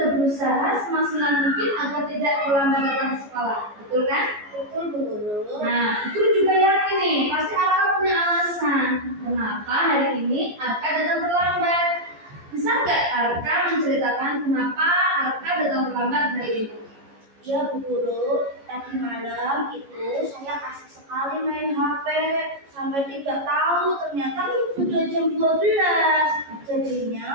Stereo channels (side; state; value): left; late; 14 ms